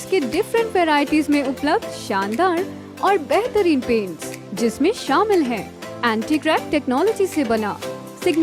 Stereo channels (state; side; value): identical; both; correlation 1.00